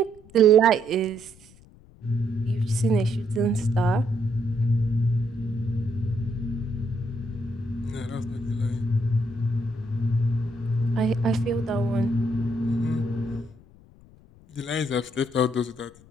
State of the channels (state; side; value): noise; left; rumble, 25 dB below the sound